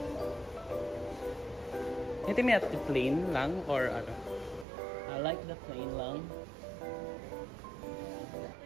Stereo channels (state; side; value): drops out; left; at 4.7 s